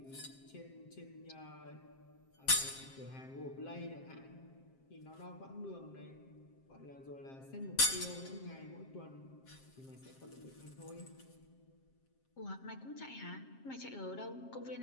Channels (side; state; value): right; late; 7.5 ms